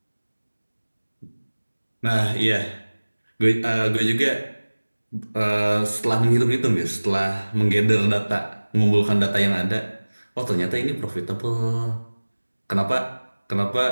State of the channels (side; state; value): both; inverted; correlation -1.00